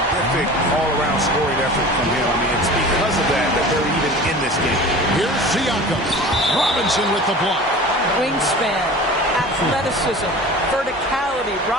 all-around scoring effort from him. I mean, it's because of that they're even in this game. Here's Siakam. Robinson with the block. Wingspan, athleticism, verticality.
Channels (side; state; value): both; normal; correlation 0.38